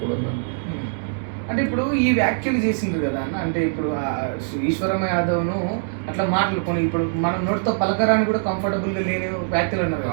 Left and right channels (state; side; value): silent; left; digital silence